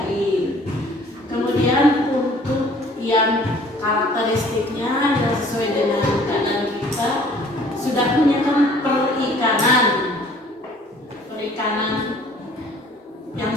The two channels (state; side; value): normal; both; correlation 0.54